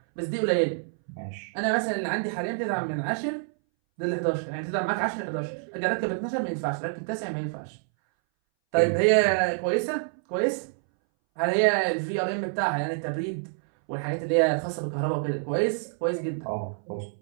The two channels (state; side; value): silent; left; 60 dB below the other